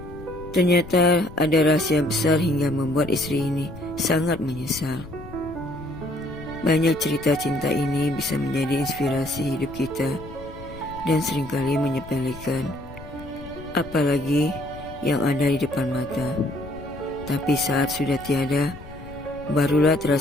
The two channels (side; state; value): left; noise; rumble, 15 dB below the sound